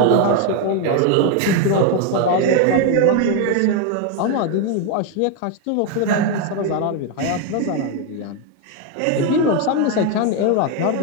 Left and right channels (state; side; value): different; both; correlation 0.01